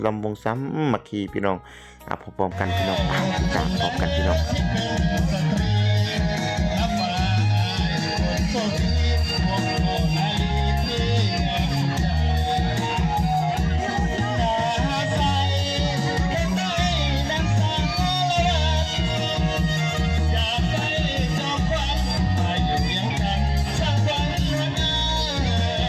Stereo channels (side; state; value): both; identical; correlation 1.00